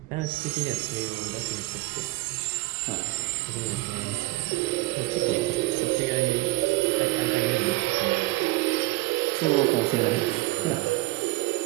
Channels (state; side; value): quieter; left; 20.6 dB